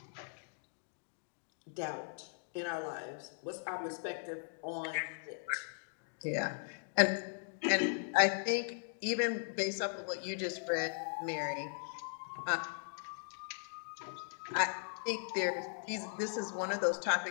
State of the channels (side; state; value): right; silent; digital silence